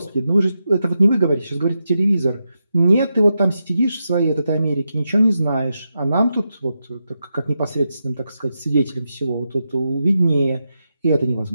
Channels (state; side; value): inverted; both; correlation -0.87